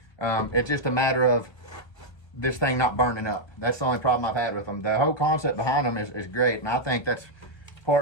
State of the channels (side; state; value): right; late; 1.5 ms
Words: It's just a matter of this thing not burning up. That's the only problem I've had with them. The whole concept behind them is great, and I think that's